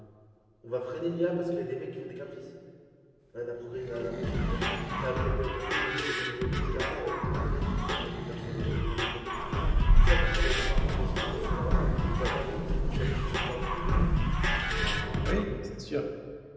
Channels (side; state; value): both; identical; correlation 1.00